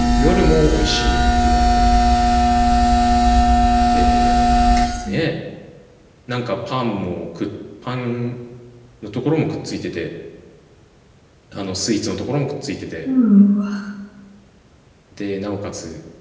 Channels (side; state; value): both; identical; correlation 1.00